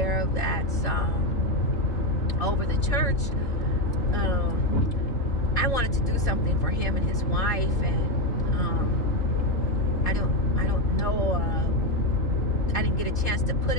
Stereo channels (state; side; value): late; right; 3.7 ms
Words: that's over the church, I wanted to do something for him and his wife, and I don't know, I didn't get a chance to put